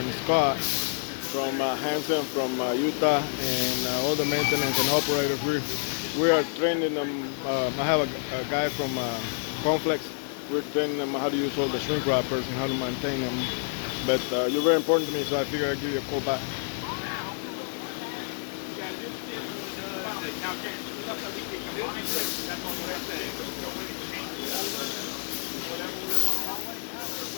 Scott from Hanson from Utah, and all the maintenance and operators. We are training them. I have a guy from Conflex. We're training them how to use all the shrink wrappers and how to maintain them. But you're very important to me, so I figured I'd give you a call back.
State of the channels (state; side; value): silent; right; digital silence